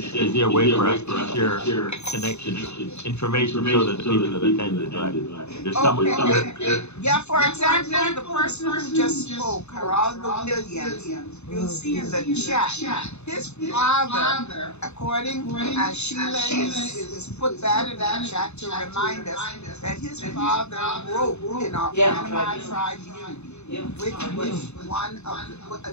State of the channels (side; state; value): right; late; 0.81 ms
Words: is there a way for us to share connections, information so that the people that attended, right? There's someone here. Yeah, for example, the person who just spoke, Geraldo Williams, you'll see in the chat, his father, according as Sheila is put that in the chat to remind us that his father wrote in our Panama Tribune. Which was one of the,